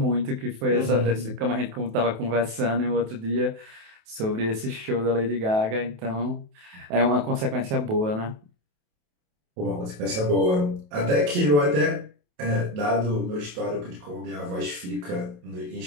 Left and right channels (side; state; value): left; late; 28 ms